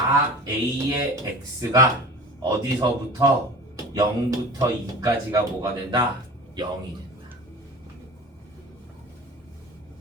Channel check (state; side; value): normal; both; correlation 0.38